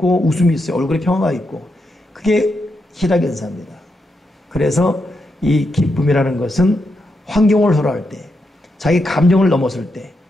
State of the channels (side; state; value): both; normal; correlation 0.84